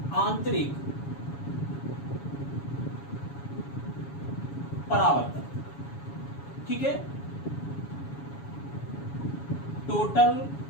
आंतरिक परावर्तन, ठीक है, टोटल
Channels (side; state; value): right; late; 7.2 ms